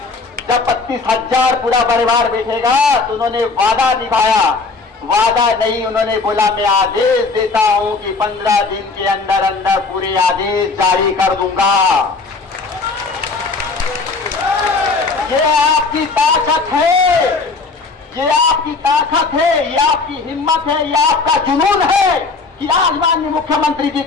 जब 32,000 पूरा परिवार बैठेगा तो उन्होंने वादा निभाया। वादा नहीं, उन्होंने बोला मैं आदेश देता हूं कि 15 दिन के अंदर अंदर पूरे आदेश जारी कर दूंगा। ये आपकी ताकत है, ये आपकी ताकत है, ये आपकी हिम्मत है, ये आपका जुनून है कि आज माननीय मुख्यमंत्री जी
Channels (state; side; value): quieter; right; 4.1 dB